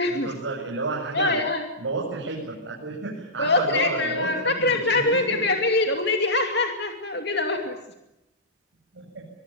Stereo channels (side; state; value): both; normal; correlation -0.15